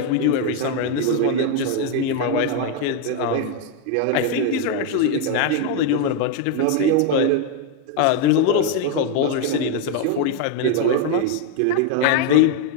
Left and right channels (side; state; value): both; different; correlation 0.01